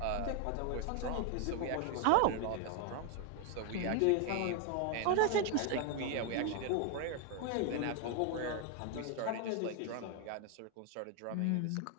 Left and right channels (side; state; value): both; different; correlation 0.01